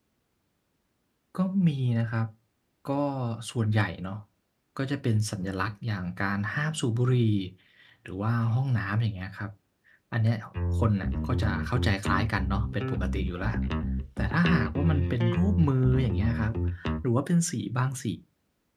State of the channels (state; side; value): identical; both; correlation 1.00